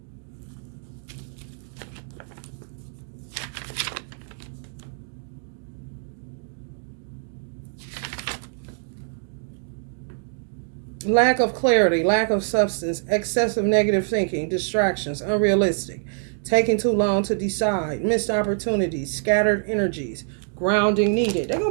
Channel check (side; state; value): left; silent; 56 dB below the other